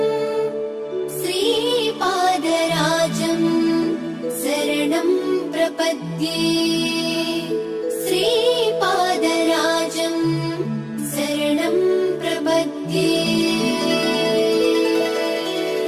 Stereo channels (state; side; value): identical; both; correlation 1.00